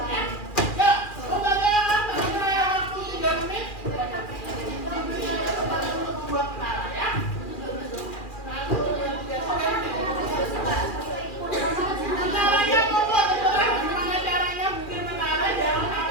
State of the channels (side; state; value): right; late; 2.4 ms